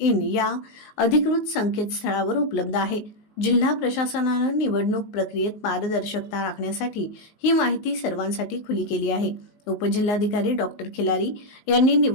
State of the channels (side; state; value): right; late; 19 ms